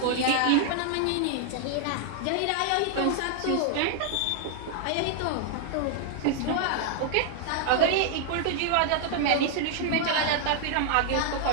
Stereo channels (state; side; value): different; both; correlation -0.01